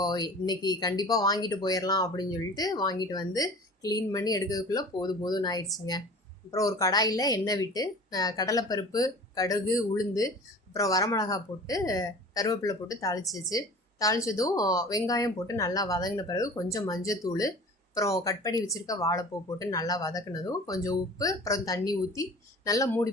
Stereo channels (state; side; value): normal; both; correlation 0.41